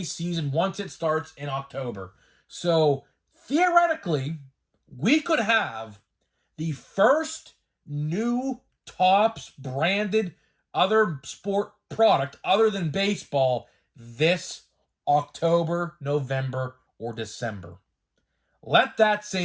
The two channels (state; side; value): identical; both; correlation 1.00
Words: season once it starts in October. So, theoretically, we could have the first new Topps branded other sport product other than baseball this October, November, or December. Let that